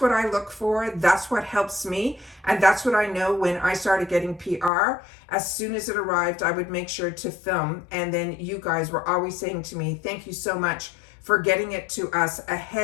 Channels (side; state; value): right; drops out; at 4.7 s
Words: I look for. That's what helps me. And that's what I know when I started getting PR. As soon as it arrived, I would make sure to film. And then you guys were always saying to me, thank you so much for getting it to us